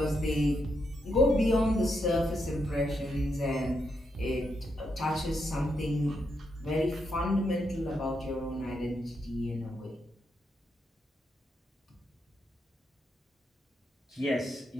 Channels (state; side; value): normal; both; correlation 0.81